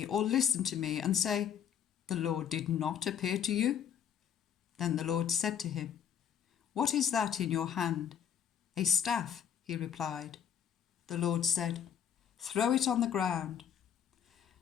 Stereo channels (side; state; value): right; quieter; 8.6 dB